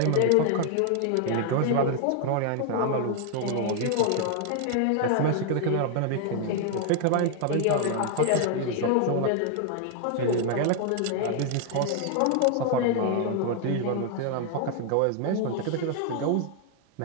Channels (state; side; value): different; both; correlation 0.00